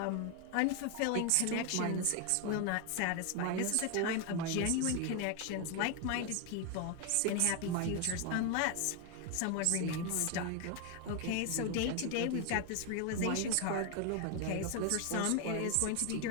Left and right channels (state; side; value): different; both; correlation 0.01